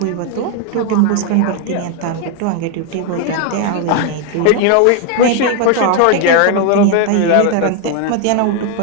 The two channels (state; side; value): different; both; correlation 0.01